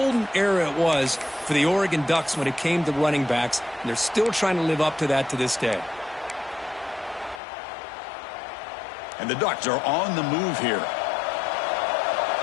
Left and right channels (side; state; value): right; drops out; at 7.4 s